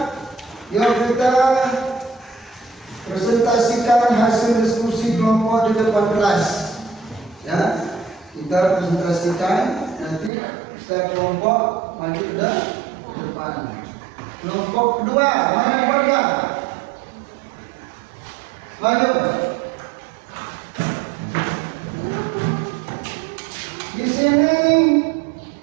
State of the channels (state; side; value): drops out; left; at 10.3 s